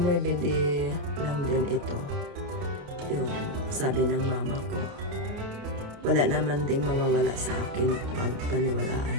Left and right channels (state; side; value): late; left; 29 ms